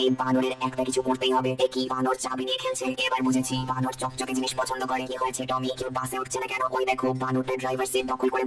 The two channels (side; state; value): both; identical; correlation 1.00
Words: এই বানরের একটা কিছু করতেই হবে। এ কি বানর চাবি নিয়ে খেলছে? এবার বুঝেছি, বানর চকচকে জিনিস পছন্দ করে। কি হয়েছে টমি, কেউ বাসে উঠছে না কেন? ওই দেখো, বানরটা ড্রাইভার সিট দখল করে